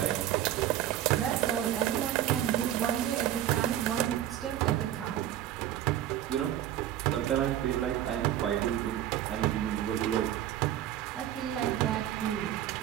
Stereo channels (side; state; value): left; quieter; 11.9 dB